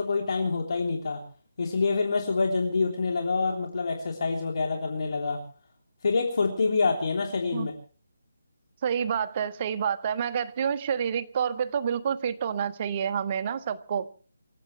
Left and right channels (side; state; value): both; inverted; correlation -0.81